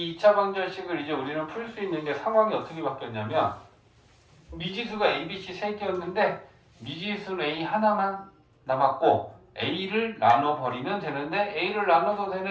2차 방정식을 이제 우리는 풀 수 있는 게 상황이 어떻게 바뀌었냐면 미지수가 A, B, C 3개였는데 미지수는 A 하나만 남았고 A를 나눠버리면 되는데 A를 나눠도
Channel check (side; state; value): both; identical; correlation 1.00